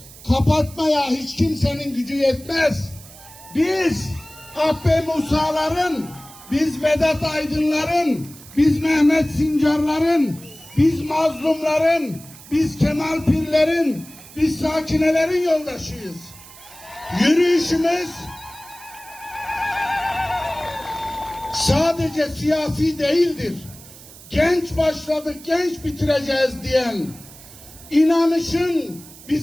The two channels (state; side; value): noise; right; hiss, 19 dB below the sound